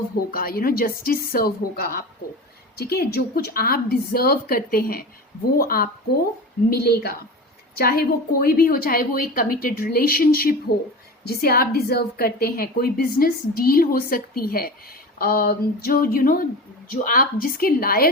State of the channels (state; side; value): normal; both; correlation 0.30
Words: होगा, जस्टिस सर्व होगा आपको। ठीक है, जो कुछ आप डिजर्व करते हैं वो आपको मिलेगा, चाहे वो कोई भी हो, चाहे वो एक कमिटेड रिलेशनशिप हो जिसे आप डिजर्व करते हैं, कोई बिजनेस डील हो सकती है जो जो आप जिसके